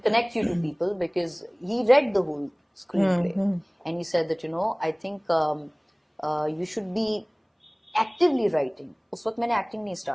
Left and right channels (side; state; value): both; identical; correlation 1.00